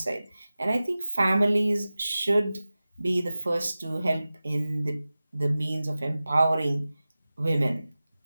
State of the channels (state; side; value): inverted; both; correlation -0.96